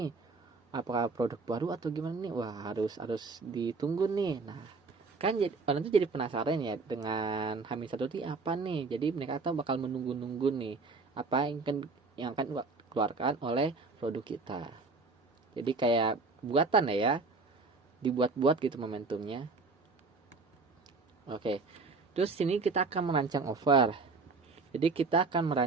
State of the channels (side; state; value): left; quieter; 4.0 dB